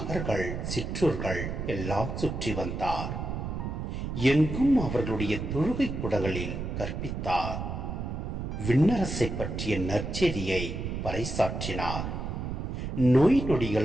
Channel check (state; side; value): noise; right; rumble, 4 dB below the sound